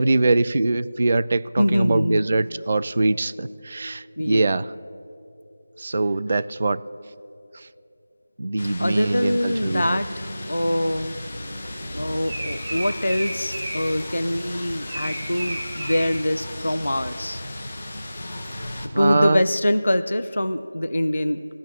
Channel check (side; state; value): both; inverted; correlation -0.96